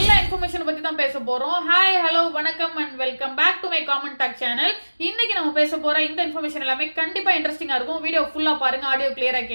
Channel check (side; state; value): both; inverted; correlation -1.00